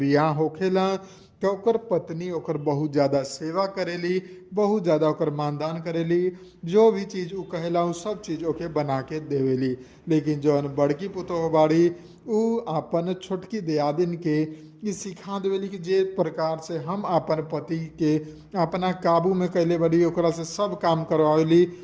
होखेला तो ओकर पत्नी ओकर बहुत ज़्यादा सेवा करेली, बहुत ज़्यादा ओकर मानदान करेली। जो भी चीज़ उ कहेला उ सब चीज़ ओके बना के देवेली। लेकिन जौन बड़की पुतोह बाड़ी उ अपन छोटकी दियादिन के ये सिखा देवेली कि जे प्रकार से हम अपन पति के अपना काबू में कैले बड़ी, ओकरा से सब काम करवावेली,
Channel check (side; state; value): both; identical; correlation 1.00